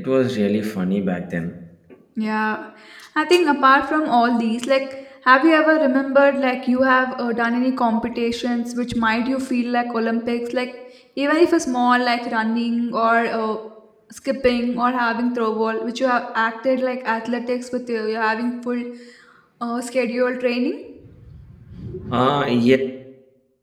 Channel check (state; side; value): identical; both; correlation 1.00